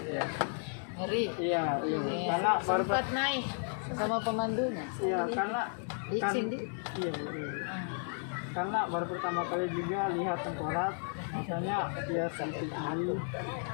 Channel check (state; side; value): silent; right; 55 dB below the other